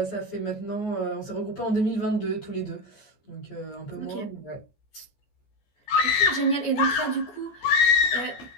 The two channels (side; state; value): right; late; 14 ms